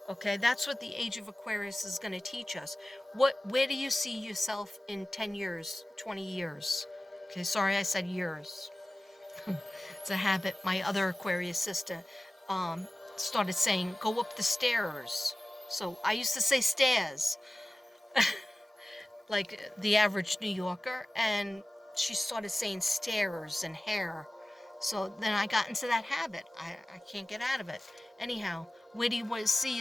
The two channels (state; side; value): normal; both; correlation 0.96